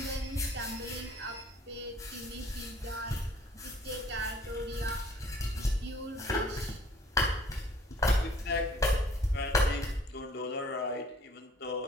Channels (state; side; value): normal; both; correlation 0.57